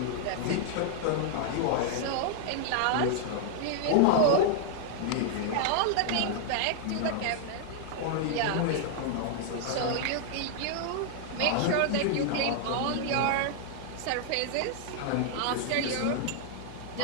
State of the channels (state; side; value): different; both; correlation 0.00